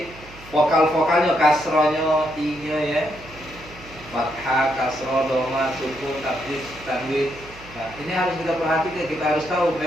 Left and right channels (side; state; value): right; noise; hum, 20 dB below the sound